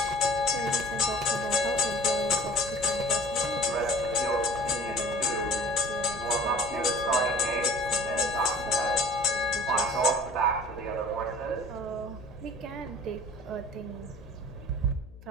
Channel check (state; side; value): noise; left; hum, 19 dB below the sound